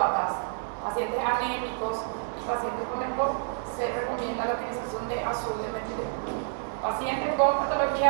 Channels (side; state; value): left; silent; digital silence